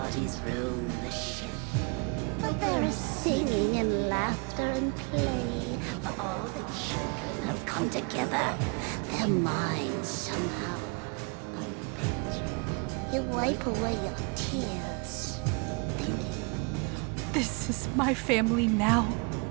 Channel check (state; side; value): quieter; left; 32.7 dB